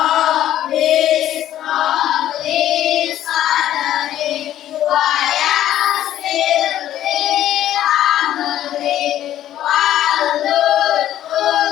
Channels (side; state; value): right; quieter; 12.2 dB